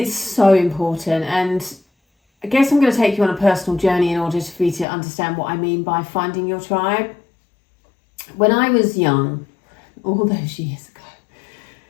so important, and I guess I'm going to take you on a personal journey in order for you to understand what I mean by finding your tribe. When I was young, all those years ago,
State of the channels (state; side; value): drops out; right; at 4.9 s